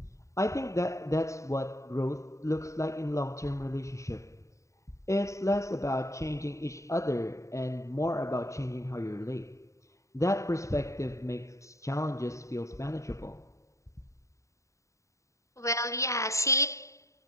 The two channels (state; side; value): late; right; 0.15 ms